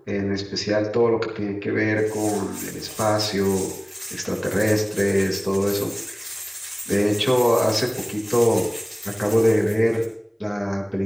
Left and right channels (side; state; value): both; identical; correlation 1.00